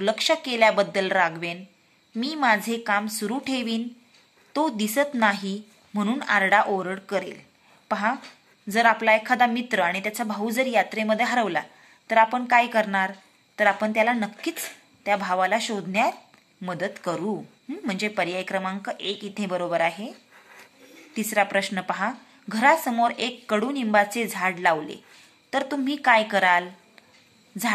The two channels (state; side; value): identical; both; correlation 1.00